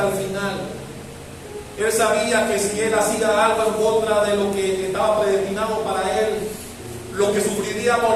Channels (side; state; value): both; identical; correlation 1.00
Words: el final Él sabía que si Él hacía algo en contra de lo que estaba predestinado para Él, lo que